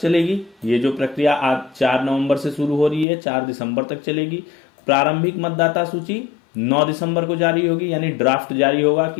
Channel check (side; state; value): right; drops out; at 3.1 s